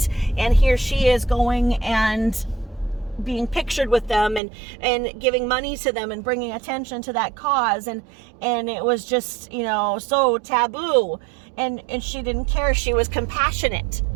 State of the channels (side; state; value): left; drops out; at 4.4 s